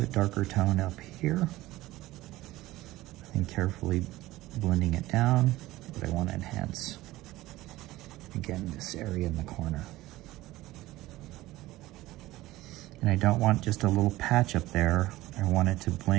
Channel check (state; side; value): quieter; left; 17.5 dB